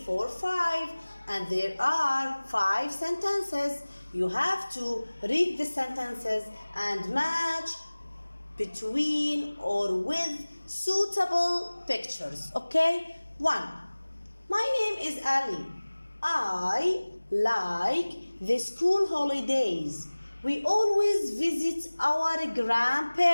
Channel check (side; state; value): both; inverted; correlation -1.00